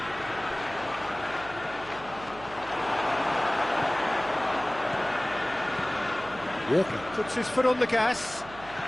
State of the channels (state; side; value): noise; right; hum, 18 dB below the sound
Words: Walker puts his foot on the gas.